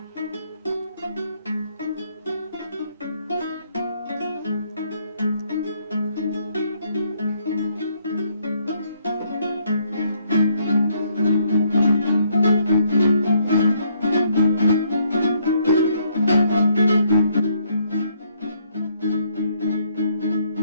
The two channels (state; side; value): inverted; both; correlation -0.70